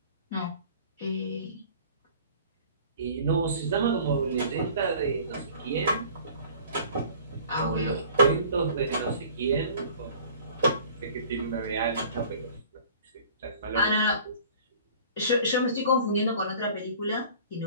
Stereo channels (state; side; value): inverted; both; correlation -0.48